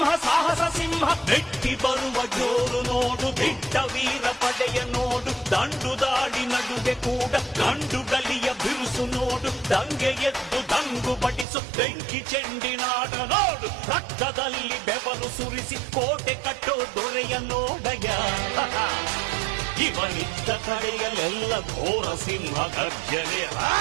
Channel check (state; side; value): drops out; left; at 11.5 s